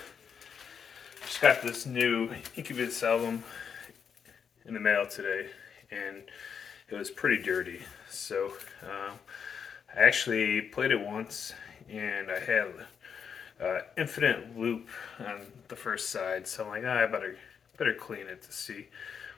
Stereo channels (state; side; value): quieter; right; 6.9 dB